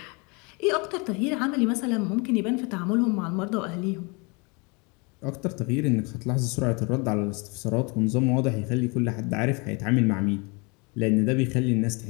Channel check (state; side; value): quieter; right; 30.2 dB